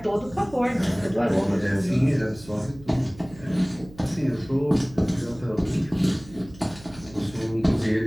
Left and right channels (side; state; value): right; noise; hum, 20 dB below the sound